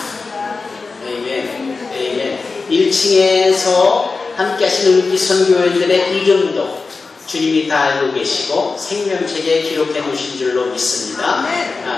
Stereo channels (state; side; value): quieter; right; 4.2 dB